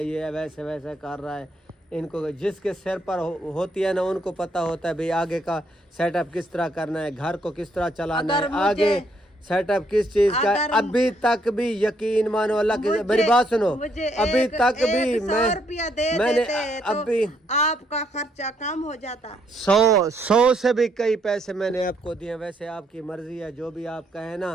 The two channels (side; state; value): both; normal; correlation 0.72